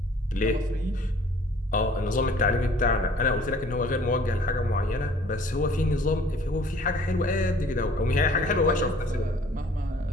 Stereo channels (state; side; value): normal; both; correlation 0.54